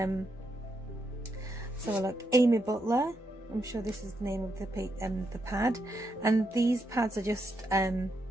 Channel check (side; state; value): both; normal; correlation 0.81